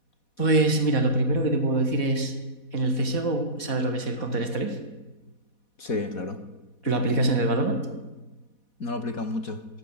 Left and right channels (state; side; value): late; right; 4.1 ms